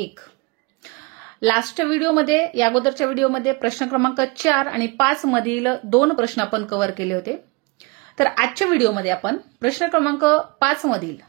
लास्ट व्हिडिओमध्ये या अगोदरच्या व्हिडिओमध्ये प्रश्न क्रमांक 4 आणि 5 मधील 2 प्रश्न आपण कव्हर केले होते. तर आजच्या व्हिडिओमध्ये आपण प्रश्न क्रमांक 5 मधील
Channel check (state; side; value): quieter; left; 27.7 dB